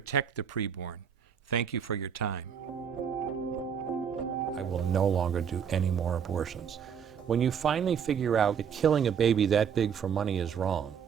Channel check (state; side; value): quieter; left; 7.6 dB